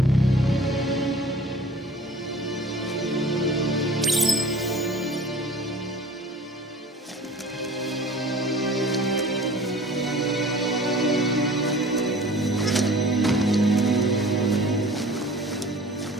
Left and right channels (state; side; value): normal; both; correlation 0.45